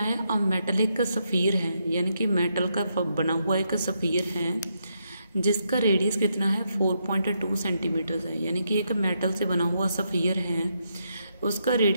अब मेटलिक सफ़ीर है, यानी कि मेटल का बना हुआ एक सफ़ीर है जिसका रेडियस कितना है 4.2 सेंटीमीटर है। यानी कि एक मेटल से बना हुआ सफ़ीर है, उसका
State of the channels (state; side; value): inverted; both; correlation -0.80